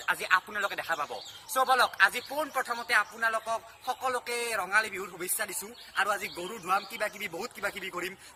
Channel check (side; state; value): both; identical; correlation 1.00